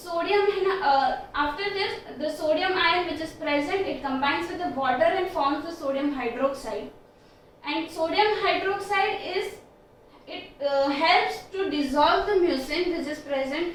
after this, the sodium ion which is present, it combines with the water and forms the sodium hydroxide. And sodium hydroxide helps to dissolve the mucin which is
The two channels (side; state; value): both; identical; correlation 1.00